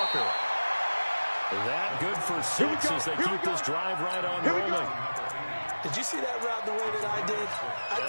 That good for 6 as they keep this drive right on rolling. Did you see that route the way that I did? I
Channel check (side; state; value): both; inverted; correlation -1.00